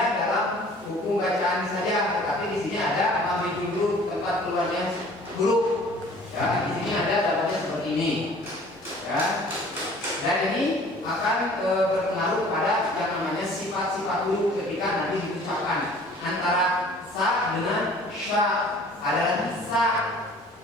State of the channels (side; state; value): both; normal; correlation 0.51